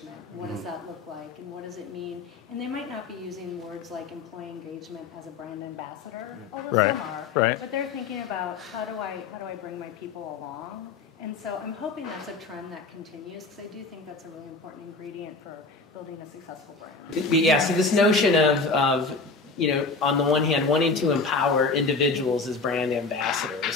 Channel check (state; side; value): quieter; right; 4.0 dB